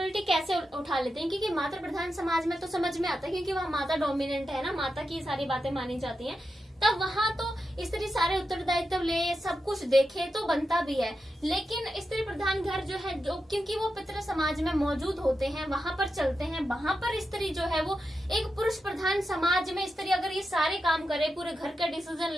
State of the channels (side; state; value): both; normal; correlation 0.89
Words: कैसे उठा लेते हैं। क्योंकि मातृ प्रधान समाज में तो समझ में आता है, क्योंकि वहाँ माता डोमिनेंट है ना, माता की सारी बातें मानी जाती हैं, तब वहाँ तो स्त्री सारे उत्तरदायित्व ले, सब कुछ देखे तो बनता भी है। लेकिन स्त्री प्रधान घर जो है, जो क्योंकि वो पितृ समाज में मौजूद होते हैं, वहां पर चलते हैं, वहां पर स्त्री जो है वो एक पुरुष प्रधान समाज में स्त्री अगर ये सारे काम करे, पूरे घर का डिसीजन